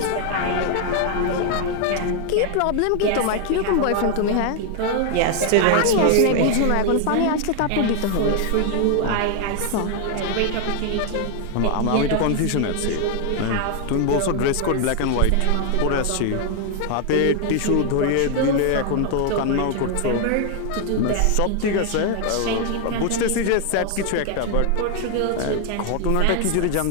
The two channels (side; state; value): both; different; correlation 0.00